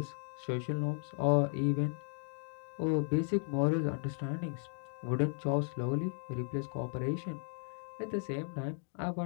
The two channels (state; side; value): silent; right; 54 dB below the other